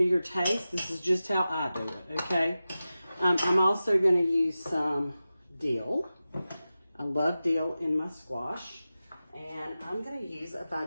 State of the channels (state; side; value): inverted; both; correlation -0.94